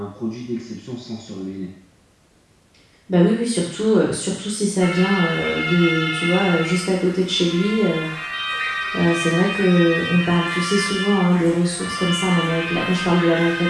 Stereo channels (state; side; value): identical; both; correlation 1.00